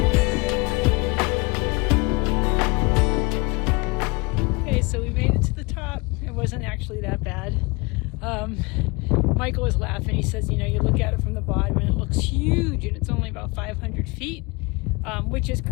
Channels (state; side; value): quieter; right; 26.6 dB